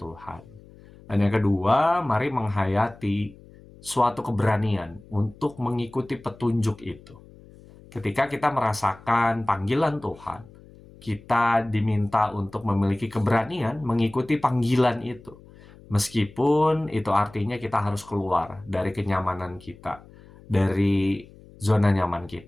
Dan yang kedua, mari menghayati suatu keberanian untuk mengikuti petunjuk itu. Ketika kita merasakan panggilan Tuhan, kita diminta untuk memiliki keberanian mengikuti panggilan itu. Meskipun itu artinya kita harus keluar dari kenyamanan kita, dari zona nyaman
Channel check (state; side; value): noise; left; hum, 22 dB below the sound